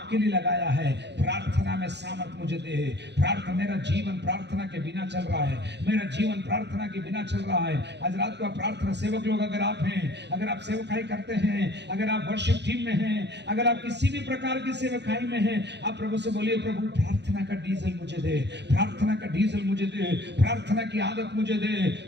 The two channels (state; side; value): late; left; 0.50 ms